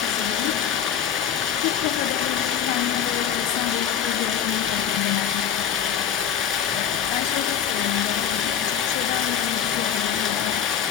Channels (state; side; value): quieter; right; 8.7 dB